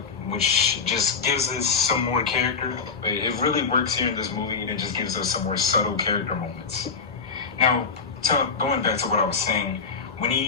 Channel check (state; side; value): quieter; right; 5.4 dB